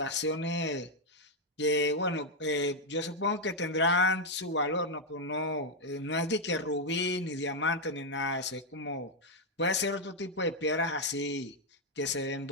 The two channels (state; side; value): normal; both; correlation 0.00